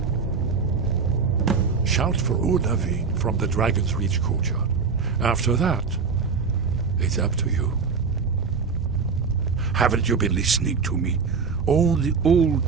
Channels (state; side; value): quieter; left; 5.3 dB